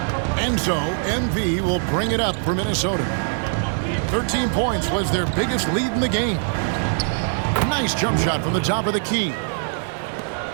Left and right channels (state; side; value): silent; left; 64 dB below the other